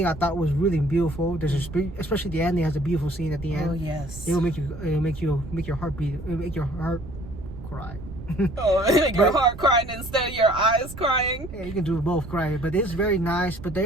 I thought was really beautiful. Especially the ending has a beautiful scene at the end. Oh yes. It'll make your heart beat. It'll make your heart cry. Your heart crying instead of your eyes crying. Yeah, you can do both crying, but it's very nice. But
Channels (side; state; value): right; noise; rumble, 13 dB below the sound